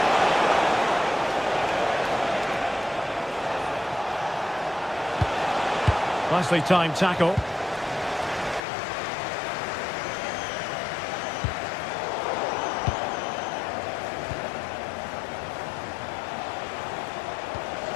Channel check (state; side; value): drops out; right; at 8.6 s